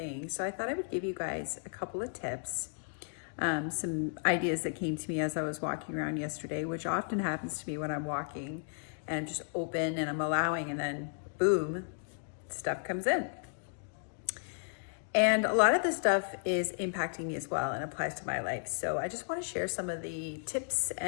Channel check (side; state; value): right; silent; digital silence